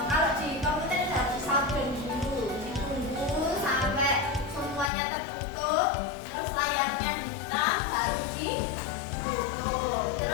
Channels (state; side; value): drops out; right; at 4.9 s